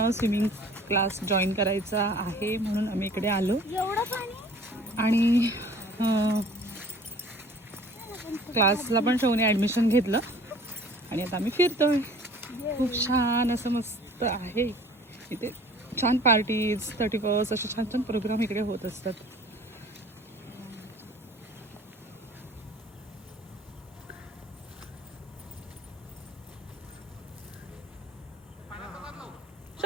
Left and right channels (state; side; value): normal; both; correlation 0.49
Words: स्विमिंग क्लास जॉईन करायचा आहे म्हणून आम्ही इकडे आलो. एवढं पाणी आणि क्लासला पण शौने ॲडमिशन घेतलं आणि आता आम्ही फिरतोय. खूप छान असं मस्त आहे इथे. छान पार्टीज, 31st असे छान छान प्रोग्राम इकडे होत असतात.